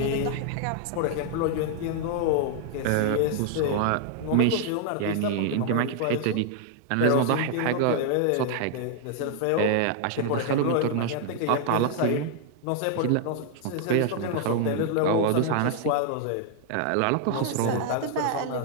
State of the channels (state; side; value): different; both; correlation 0.00